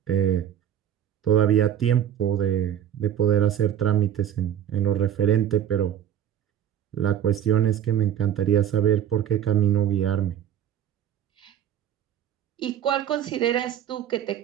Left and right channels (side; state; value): left; quieter; 10.1 dB